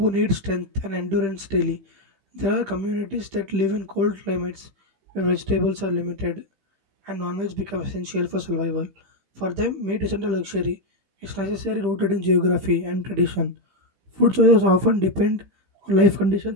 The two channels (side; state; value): left; late; 15 ms